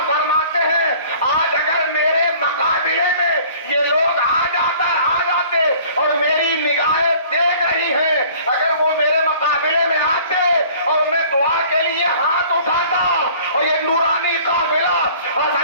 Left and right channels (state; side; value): inverted; both; correlation -0.50